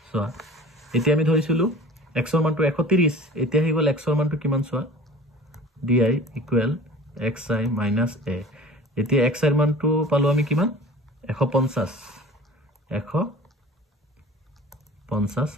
সোৱা এতিয়া আমি ধৰিছিলো x ৰ মানটো 130 এতিয়া হৈ গল x ৰ মানটো কিমান সোৱা di equal xi minus a এতিয়া x ৰ মানটো পালো আমি কিমান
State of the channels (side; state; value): both; normal; correlation 0.42